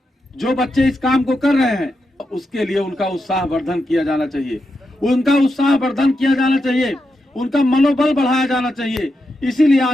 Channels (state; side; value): normal; both; correlation 0.86